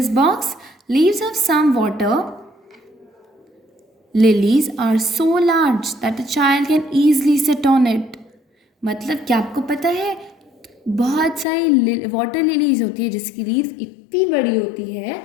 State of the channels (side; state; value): right; drops out; at 11.5 s